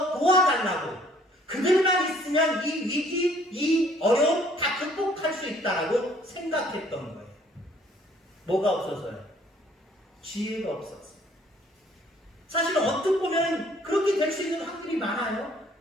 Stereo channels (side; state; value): both; normal; correlation 0.60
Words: 도와달라고, 그들만 있으면 이 위기, 이 어려움 다 극복할 수 있다라고 생각했던 거예요. 뭐가 없어서요? 지혜가 없었어요. 사실은 어떻게 보면 그렇게 될 수 있는 확률이 많아요.